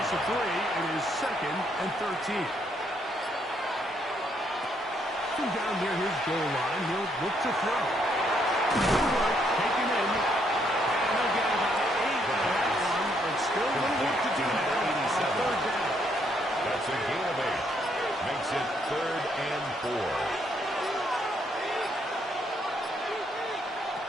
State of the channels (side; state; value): both; normal; correlation 0.72